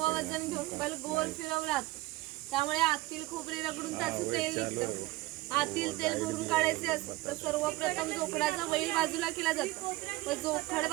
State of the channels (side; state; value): left; quieter; 19.0 dB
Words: वजन घेऊन बैल गोल फिरवला जातो. त्यामुळे आतील खोबरे रगडून त्याचं तेल निघतं. आतील तेल भरून काढायचे असते तर सर्वप्रथम जोखडाचा बैल बाजूला केला जातो व जोखड